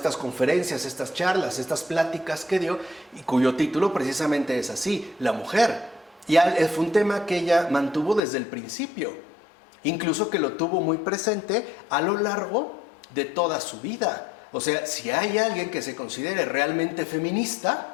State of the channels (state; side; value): drops out; right; at 8.2 s